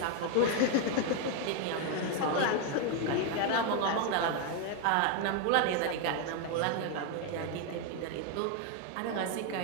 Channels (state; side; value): different; both; correlation 0.01